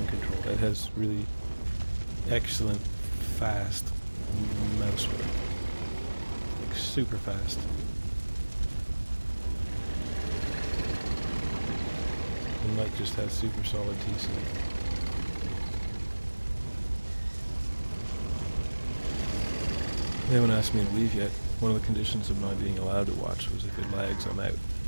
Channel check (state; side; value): inverted; both; correlation -1.00